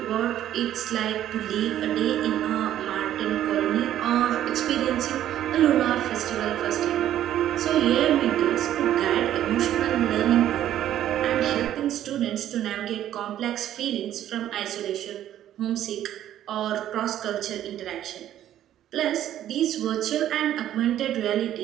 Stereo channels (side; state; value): left; quieter; 11.8 dB